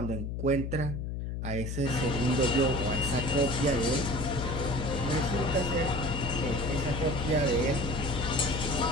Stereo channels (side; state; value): left; noise; hum, 4 dB below the sound